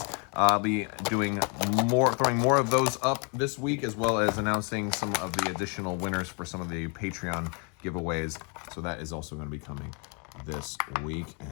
I'll be doing throwing more of those up this week, as well as announcing some of the additional winners for some of the Patreon giveaways. So that is also going to be coming this week.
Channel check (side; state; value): right; quieter; 35.6 dB